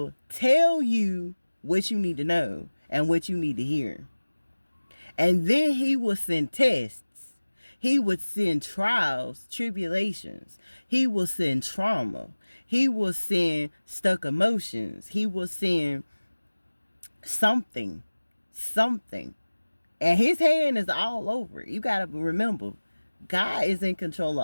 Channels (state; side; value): inverted; both; correlation -1.00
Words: tell you what you need to know and what you need to hear. And then He will send tests. He would send trials, tribulations. He will send trauma. He will send stuck emotions. He will send something. And His hand is all over it. You got to remember, God is in control